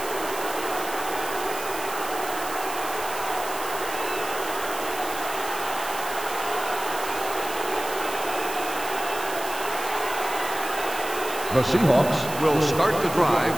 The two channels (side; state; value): right; noise; hiss, 10 dB below the sound